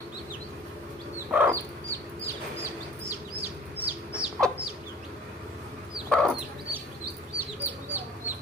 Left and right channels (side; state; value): both; normal; correlation 0.48